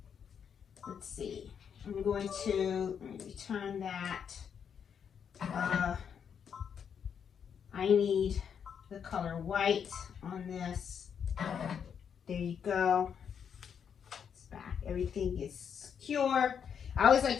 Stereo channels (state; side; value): quieter; right; 7.5 dB